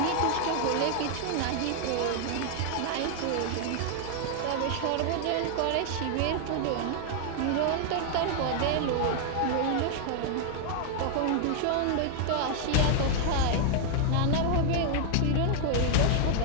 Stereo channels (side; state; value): both; different; correlation 0.00